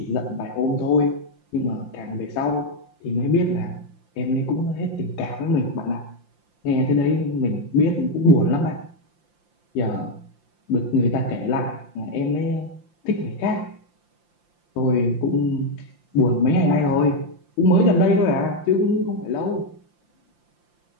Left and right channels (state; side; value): late; left; 5.8 ms